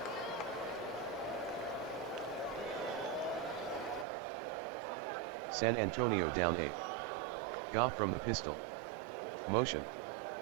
San Antonio down 8. Goff from the pistol. Motion.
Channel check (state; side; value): drops out; left; at 4.0 s